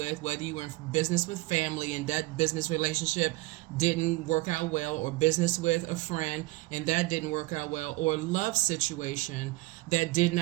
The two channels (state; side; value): quieter; left; 20.8 dB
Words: whether you were in business with family and that business relationship didn't work out well, or business with a friend and that didn't work out well, or love situation that did